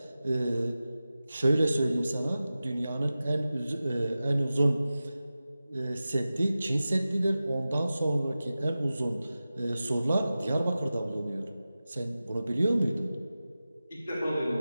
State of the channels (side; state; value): both; inverted; correlation -0.95